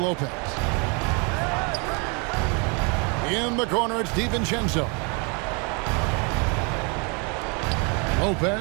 In the corner, it's DiVincenzo.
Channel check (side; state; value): left; quieter; 33.4 dB